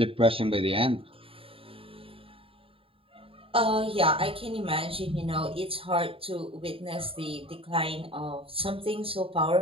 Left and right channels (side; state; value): left; late; 0.27 ms